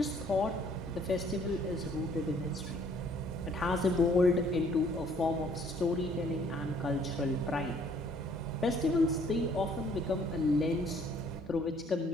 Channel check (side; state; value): both; normal; correlation 0.61